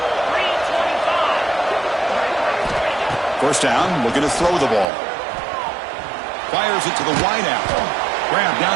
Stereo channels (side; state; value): left; drops out; at 4.9 s